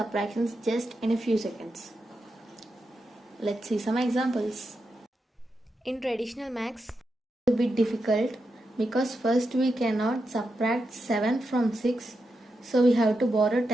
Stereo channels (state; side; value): normal; both; correlation 0.87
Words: just in a few seconds. Let's see some examples. In traditional maths, it's a bit difficult because first we cannot subtract 7 from 6, so we have to borrow